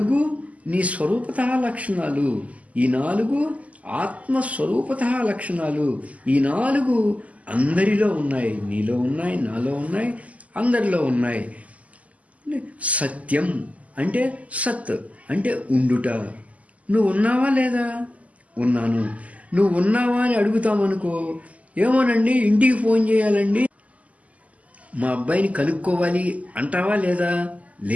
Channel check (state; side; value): late; left; 0.071 ms